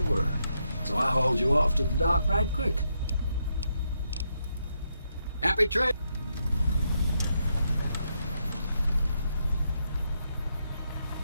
were. So I hauled you off to the dock right quick. Happy trail.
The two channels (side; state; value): both; inverted; correlation -0.80